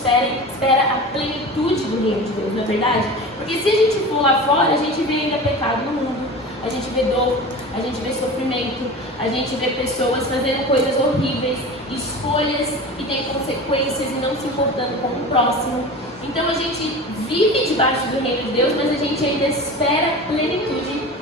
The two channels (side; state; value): both; normal; correlation 0.33